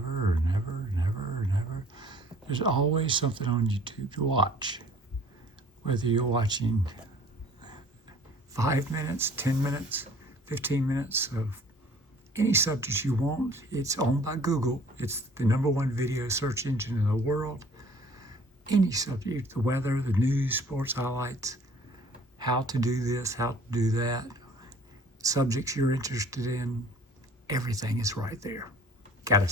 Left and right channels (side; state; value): both; normal; correlation 0.53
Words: and ever and ever and ever. There's always something on YouTube to watch. Whether you're watching 5 minutes, 10 minutes, 15 minutes of any subject you want, it's owned by Google. It's the number one video search engine in the world. Any subject, the weather, the news, sports highlights, how to do this, how to do that, subjects you're interested in, everything is right there. Gotta